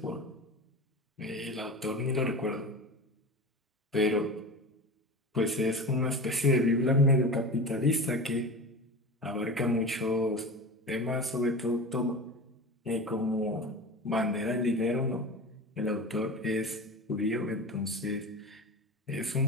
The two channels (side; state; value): both; normal; correlation 0.30